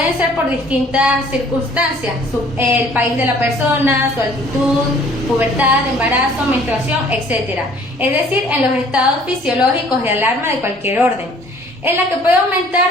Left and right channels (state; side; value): normal; both; correlation 0.55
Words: ser por distintas circunstancias, el país de la persona, su altitud, pubertad, embarazo, menstruación, etc. Es decir, en los estados fisiológicos de alarma de cualquier orden, en la que puede